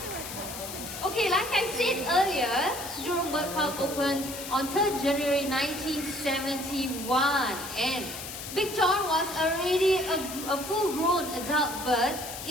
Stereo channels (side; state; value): left; noise; hiss, 9 dB below the sound